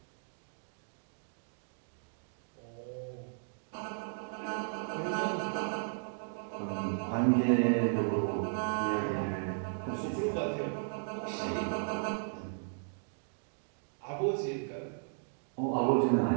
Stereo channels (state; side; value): silent; left; digital silence